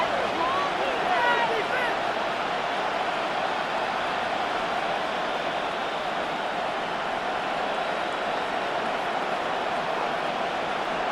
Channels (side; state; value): both; identical; correlation 1.00